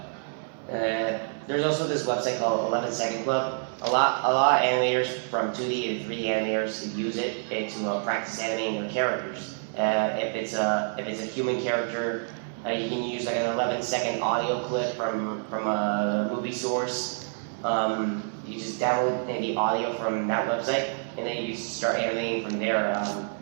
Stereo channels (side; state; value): left; silent; 60 dB below the other